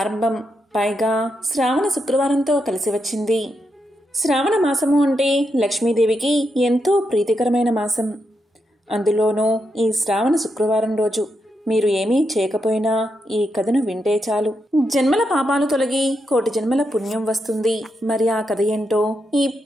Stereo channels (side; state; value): both; normal; correlation 0.83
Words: పైగా శ్రావణ శుక్రవారంతో కలిసి వచ్చింది. శ్రావణ మాసము అంటే లక్ష్మీదేవికి ఎంతో ప్రీతికరమైన మాసం. అందులోనూ ఈ శ్రావణ శుక్రవారం రోజు మీరు ఏమీ చేయకపోయినా ఈ కథను వింటే చాలు, జన్మల పాపాలు తొలగి కోటి జన్మల పుణ్యం వస్తుంది. మరి ఆ కథ ఏంటో